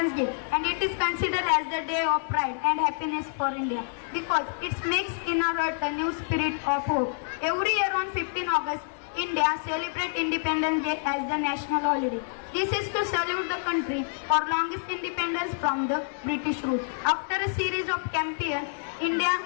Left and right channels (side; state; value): right; silent; digital silence